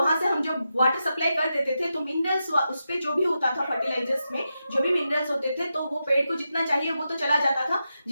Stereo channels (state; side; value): inverted; both; correlation -0.88